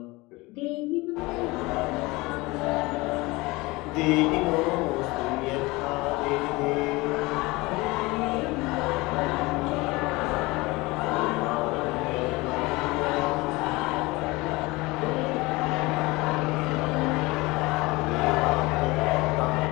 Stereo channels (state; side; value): quieter; right; 22.6 dB